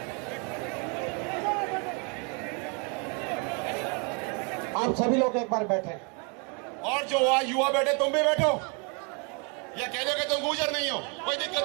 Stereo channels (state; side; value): quieter; left; 34.7 dB